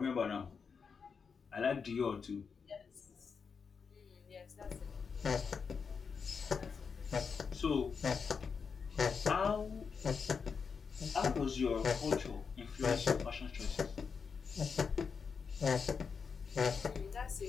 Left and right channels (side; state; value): right; quieter; 5.8 dB